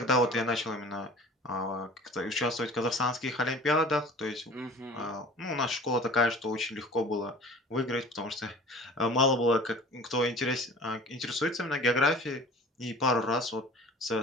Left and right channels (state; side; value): normal; both; correlation 0.42